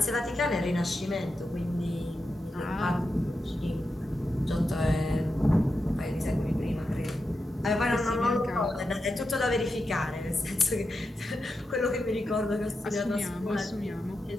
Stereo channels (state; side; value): normal; both; correlation 0.88